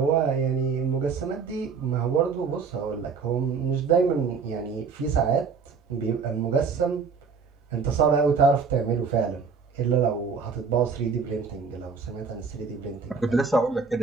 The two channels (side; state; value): left; quieter; 5.5 dB